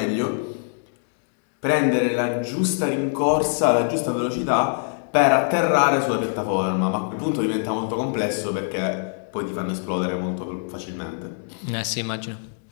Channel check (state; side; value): silent; right; digital silence